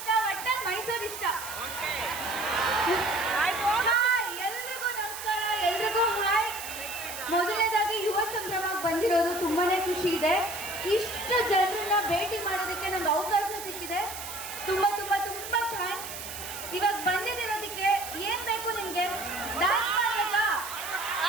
ಒಟ್ಟಲ್ಲಿ ಮೈಸೂರು ಇಷ್ಟ. ಹಾಯ್ ಎಲ್ರಿಗೂ ನಮಸ್ಕಾರ, ಎಲ್ರಿಗೂ ಹಾಯ್. ಮೊದಲನೇದಾಗಿ ಯುವ ಸಂಭ್ರಮಕ್ಕೆ ಬಂದಿರೋದು ತುಂಬಾನೇ ಖುಷಿ ಇದೆ. ಇಷ್ಟು ಜನರನ್ನ ಭೇಟಿ ಮಾಡೋದಕ್ಕೆ ನಂಗೆ ಅವಕಾಶ ಸಿಕ್ಕಿದೆ. ತುಂಬಾ ತುಂಬಾ ತುಂಬಾ ಥ್ಯಾಂಕ್ಸ್. ಇವಾಗ ಬಂದಿರೋದಕ್ಕೆ ಏನ್ ಬೇಕು ನಿಮ್ಗೆ? ಡ್ಯಾನ್ಸ್ ಮಾಡ್ಬೇಕಾ?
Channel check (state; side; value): noise; right; hiss, 9 dB below the sound